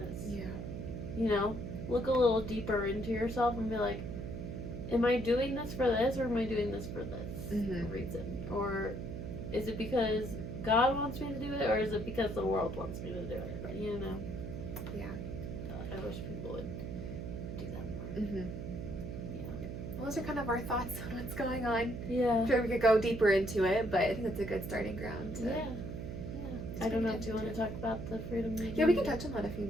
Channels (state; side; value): noise; right; hum, 6 dB below the sound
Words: Yeah. You know, look a little deeper into yourself and be like, am I doing this for this, or am I doing this for this reason? Or is it because God wants me to do it, or is it because the world wants me to do it? You know? Yeah. I wish people would do that more. Mm-hmm. Yeah. Well, those are kind of our thoughts on what's going on. Yeah. I'm sure we could go deeper into it, but I think that's a good starting ground. Yeah. I don't know if you want to talk about the Freedom movie. Yeah, we can touch on that a few